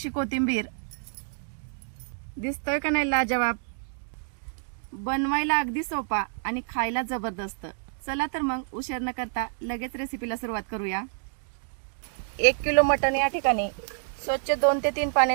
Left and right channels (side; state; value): left; silent; digital silence